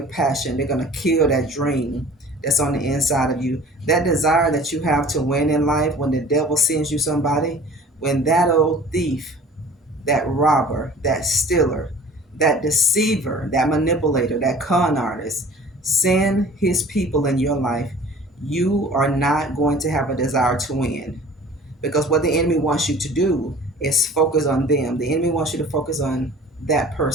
passion. They're going to kill that dream that's on the inside of you. That desire that you have to win in life when the devil sends you somebody, when that old thief, that robber, that stealer, that deceiver, that manipulator, that con artist send his people in your life, you are not going to have a desire to win. Because what the enemy wants you to do is focus on them. The enemy wants you to focus on that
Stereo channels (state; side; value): normal; both; correlation 0.46